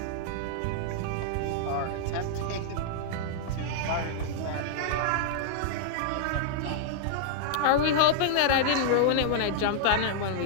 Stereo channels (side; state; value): both; different; correlation -0.02